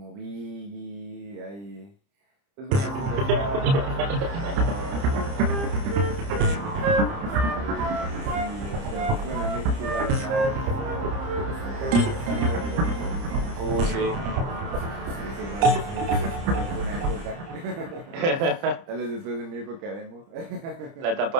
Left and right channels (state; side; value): late; left; 30 ms